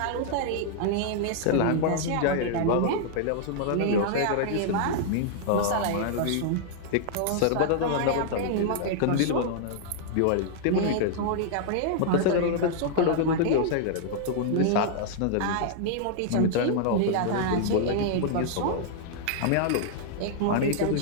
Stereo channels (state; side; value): different; both; correlation -0.01